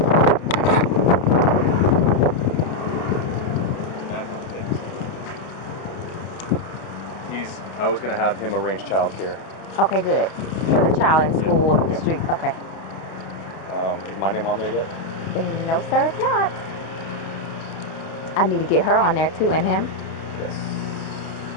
I was going to have him arrange childcare. Okay, good. For the child in school up the street. Okay. Is my name on there yet? No, sir, it's not. I need to get her on there too, and him. Yes.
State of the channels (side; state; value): right; late; 31 ms